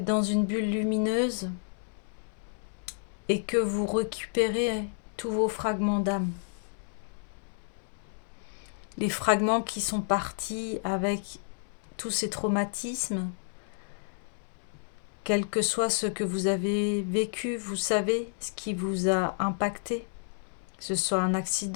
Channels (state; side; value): silent; right; 57 dB below the other